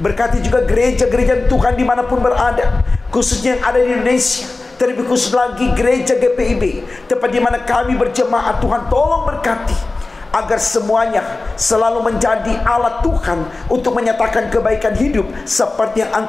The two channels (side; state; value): right; quieter; 3.4 dB